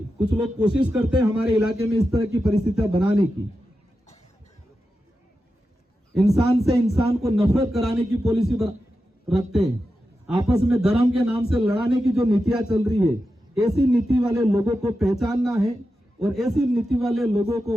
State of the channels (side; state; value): both; normal; correlation 0.90